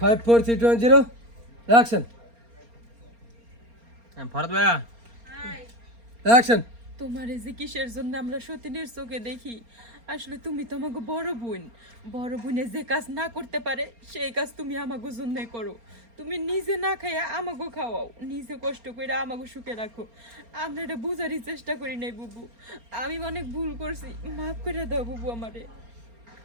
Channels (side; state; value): left; late; 4.3 ms